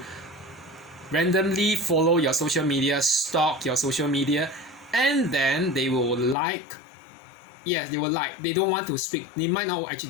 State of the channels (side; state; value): right; drops out; at 6.4 s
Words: randomly follow your social media, stalk your social media, and then they will like. Yes, they will like. They don't want to speak. They might not